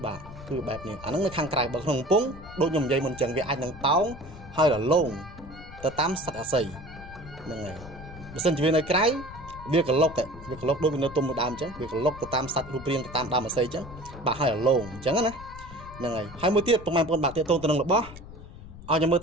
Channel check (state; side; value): noise; left; rumble, 15 dB below the sound